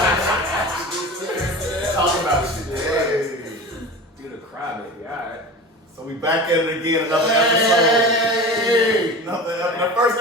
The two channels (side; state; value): both; normal; correlation 0.33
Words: Talk about shit. Hey. Do the cry, baby. Alright. So we back at it again, another episode. The first